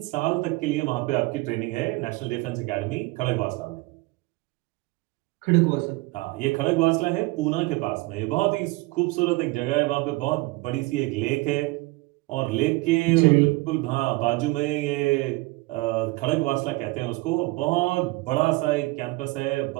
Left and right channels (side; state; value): left; quieter; 22.5 dB